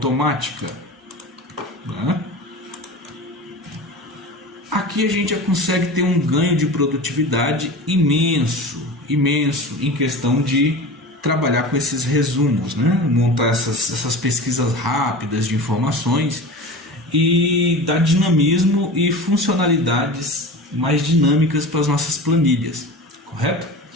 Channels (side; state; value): both; normal; correlation 0.32